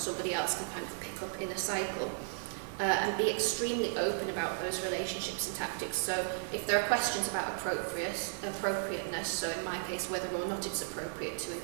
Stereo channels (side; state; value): left; silent; digital silence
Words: else can kind of pick up in a cycle. And be extremely open about those relationships and tactics. So if there are questions about appropriateness, so in my case whether or not it's appropriate to